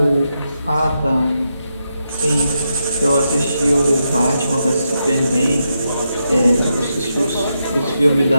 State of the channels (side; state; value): both; inverted; correlation -0.84